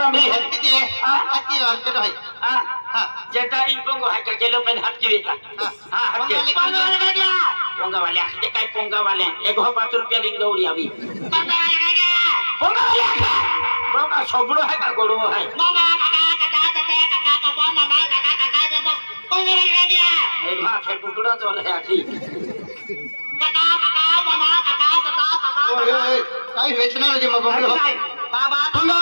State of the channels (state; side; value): inverted; both; correlation -1.00